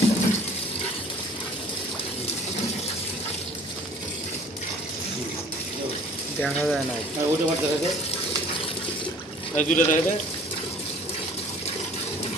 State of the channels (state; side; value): normal; both; correlation 0.50